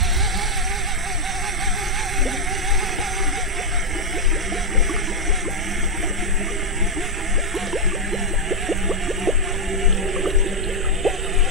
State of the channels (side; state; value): both; normal; correlation 0.00